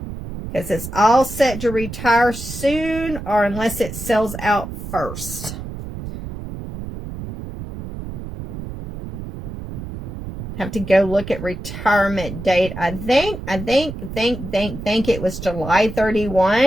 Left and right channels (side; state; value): right; noise; rumble, 9 dB below the sound